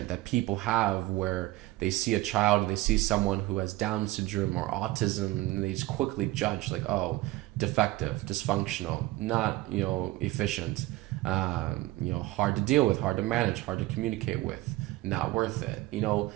that people have where they see a child, or they see someone who has Down syndrome or autism, and they just quickly judge, like, oh, defective, dysfunctional, not, efficient, hard to deal with, hard to manage, hard to communicate with, not worth it,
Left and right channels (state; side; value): quieter; left; 18.2 dB